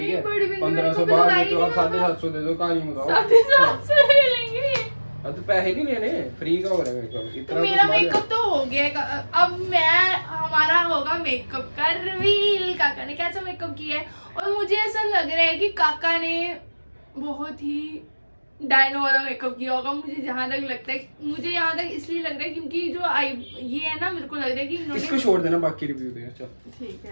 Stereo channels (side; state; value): both; inverted; correlation -1.00